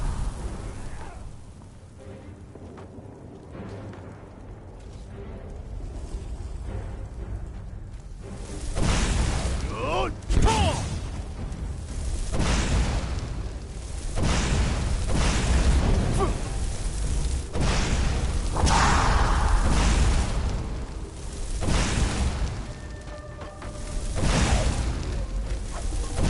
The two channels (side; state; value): both; identical; correlation 1.00